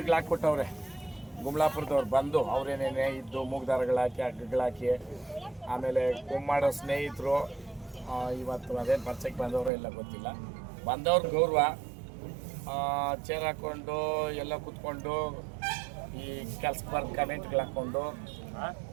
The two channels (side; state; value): left; drops out; at 9.7 s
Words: ಹಾಕ್ಕೊಟ್ಟವ್ರೆ ಗುಮ್ಲಾಪುರದವ್ರು ಬಂದು ಅವ್ರೇನೇನೇ ಇದ್ದು ಮೂಗ್ದಾರಗಳಾಕಿ ಹಗ್ಗಗಳಾಕಿ. ಆಮೇಲೆ ಕುಮ್ಮಾಡೋ ಸ್ನೇಹಿತರು ಇವತ್ತು ಅದೇನು ಪರಿಚಯಕ್ಕೆ ಬಂದವರು ಎಲ್ಲ ಗೊತ್ತಿಲ್ಲ, ಬಂದವ್ರ ಗೌರವ ಚೇರ್ ಹಾಕ್ಕೊಂಡು ಎಲ್ಲ ಕೂತ್ಕೊಂಡು ಈ ಕೆಲ್ಸಕ್ಕೆ ಬರ್ದು ಕಮೆಂಟ್ಗಳು ಹಾಕ್ಕೊಂಡು